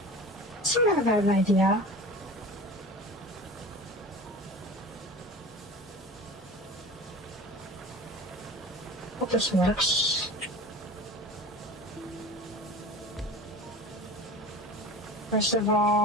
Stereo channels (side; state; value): both; normal; correlation 0.37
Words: Sort of have an idea. Hope this works. First of